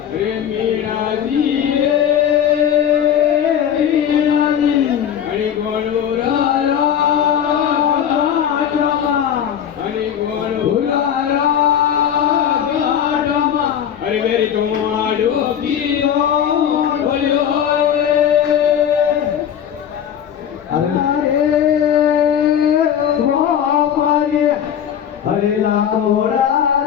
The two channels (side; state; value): right; quieter; 9.1 dB